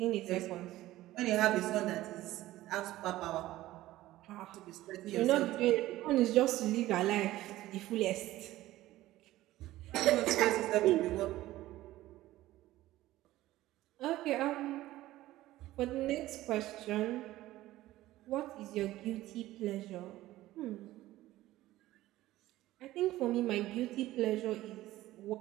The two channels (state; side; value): quieter; left; 15.9 dB